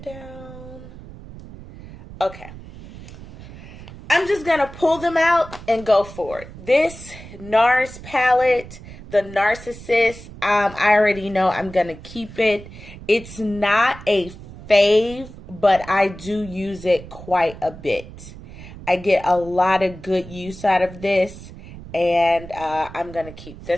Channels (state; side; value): noise; right; rumble, 16 dB below the sound